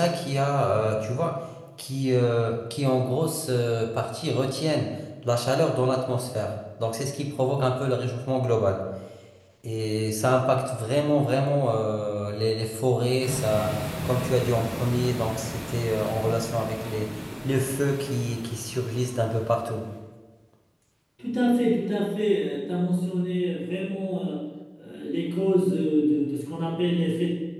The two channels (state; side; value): identical; both; correlation 1.00